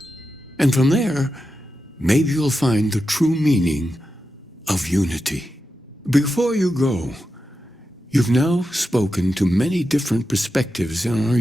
And from there, maybe you'll find the true meaning of unity. Before you go, you've now spoken to many different perspectives in our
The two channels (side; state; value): both; normal; correlation 0.89